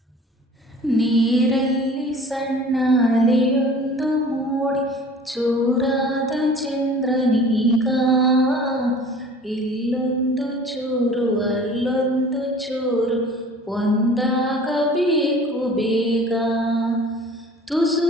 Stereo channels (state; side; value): normal; both; correlation 0.46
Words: ನೀರಲ್ಲಿ ಸಣ್ಣ ಅಲೆಯೊಂದು ಮೂಡಿ ಚೂರಾದ ಚಂದ್ರನೀಗ, ಇಲ್ಲೊಂದು ಚೂರು ಅಲ್ಲೊಂದು ಚೂರು ಒಂದಾಗಬೇಕು ಬೇಗ. ತುಸು